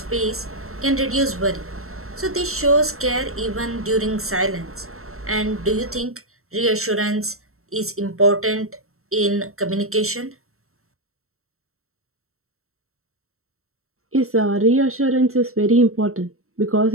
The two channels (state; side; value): late; left; 0.63 ms